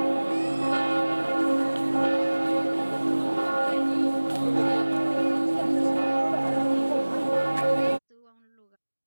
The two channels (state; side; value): inverted; both; correlation -1.00